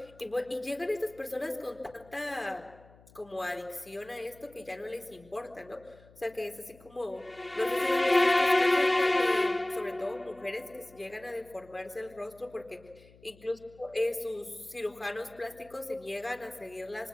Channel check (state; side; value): noise; left; hum, 25 dB below the sound